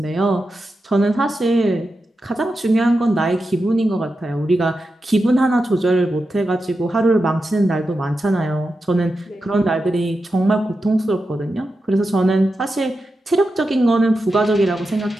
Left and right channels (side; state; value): both; normal; correlation 0.90